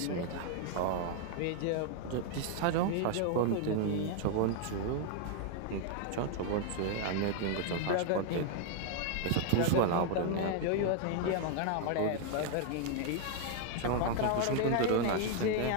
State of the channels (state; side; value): different; both; correlation 0.00